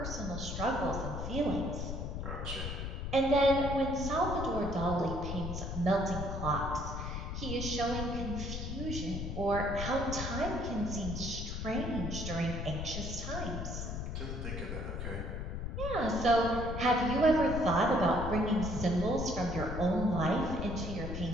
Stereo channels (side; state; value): left; noise; rumble, 4 dB below the sound